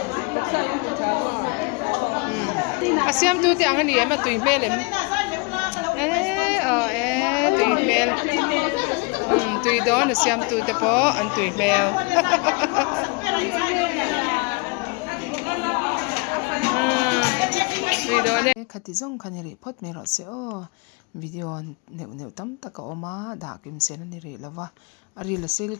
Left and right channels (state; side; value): quieter; right; 30.5 dB